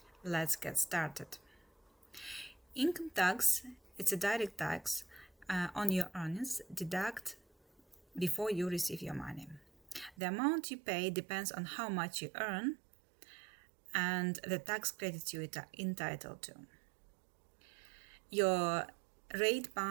Let's get started. Income tax, it's a direct tax on your earnings deduct before you receive your money. The amount you pay depends on how much you earn and the tax credits you are entitled to. Your rate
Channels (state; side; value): drops out; left; at 10.2 s